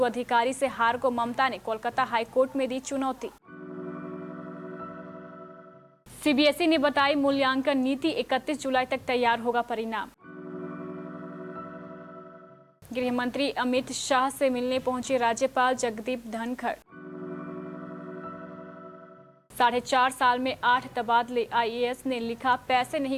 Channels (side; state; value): both; identical; correlation 1.00